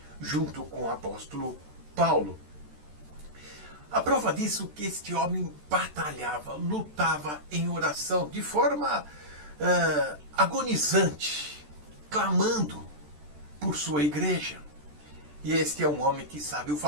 junto com o apóstolo Paulo. A prova disso é que este homem batalhava, lutava em oração de forma agonizante, clamando por sua igreja. E este é um homem que sabe o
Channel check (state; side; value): late; left; 13 ms